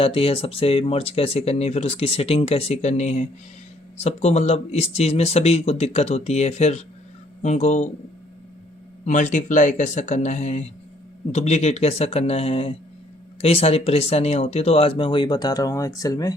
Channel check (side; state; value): both; normal; correlation 0.64